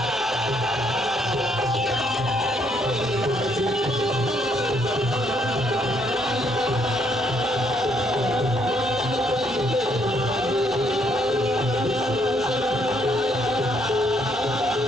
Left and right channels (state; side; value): normal; both; correlation 0.70